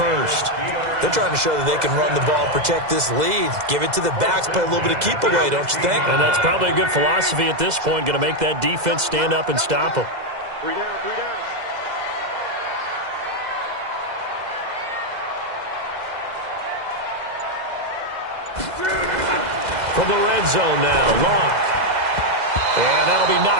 They're trying to show that they can run the ball, protect this lead. Give it to the backs, play a little bit of keep away, don't you think? And that's probably a good philosophy at this point. Going to make that defense stand up and stop them. 3 down. From the red zone now, Locke. And that'll be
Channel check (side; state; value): left; late; 2.0 ms